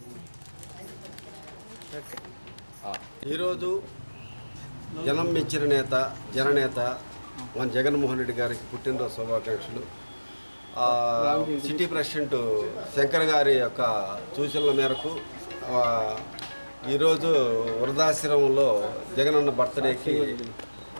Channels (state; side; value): inverted; both; correlation -1.00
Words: ఈరోజు జనం మెచ్చిన నేత జననేత మన జగన్మోహన్ రెడ్డి గారికి పుట్టినరోజు శుభాకాంక్షలు. సిటీ ప్రెసిడెంట్ శంకర్ గారి యొక్క సూచనల మేరకు ఈరోజు వృద్ధాశ్రమంలో జగనన్న బర్త్డేకి